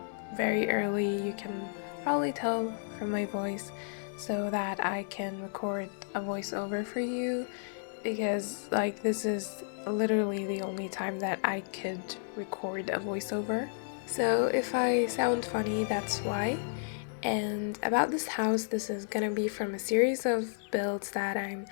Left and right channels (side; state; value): right; silent; 56 dB below the other